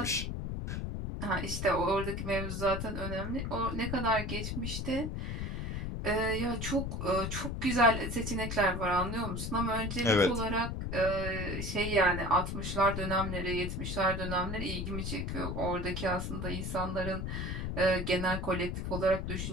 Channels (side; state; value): left; noise; rumble, 3 dB below the sound